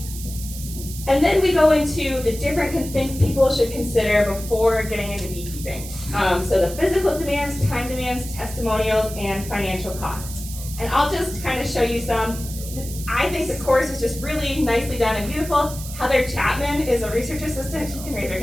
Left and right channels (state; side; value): noise; right; hiss, 12 dB below the sound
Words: And then we go into the different things people should consider before getting into beekeeping. So the physical demands, time demands, testimonials, and financial costs. And I'll just kind of show you some. I think the course is just really nicely done and beautiful. Heather Chapman is a research assistant. She can raise her